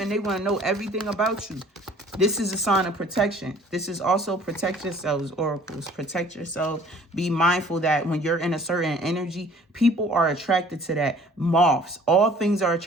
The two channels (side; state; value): both; normal; correlation 0.53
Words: they want to know everything about you. This is a sign of protection. This is also protect yourselves, oracles. Protect yourselves. Be mindful that when you're in a certain energy, people are attracted to that. Moths, all things are